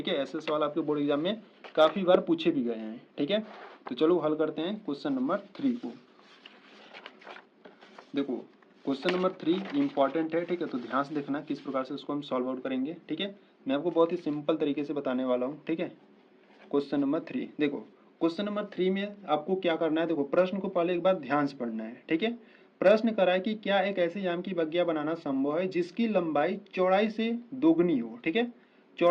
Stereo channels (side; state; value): both; identical; correlation 1.00